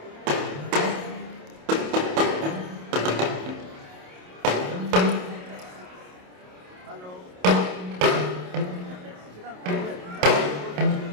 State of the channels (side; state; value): left; late; 27 ms